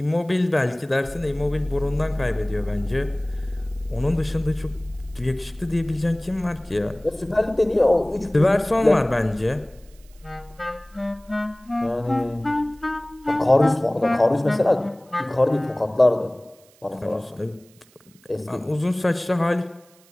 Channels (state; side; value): noise; right; hiss, 30 dB below the sound